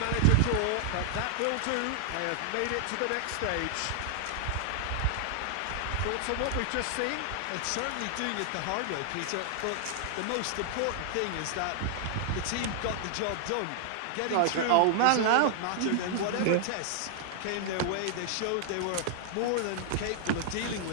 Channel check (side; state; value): both; different; correlation 0.00